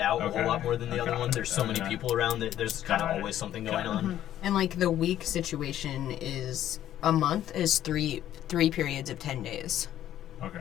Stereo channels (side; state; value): right; quieter; 12.0 dB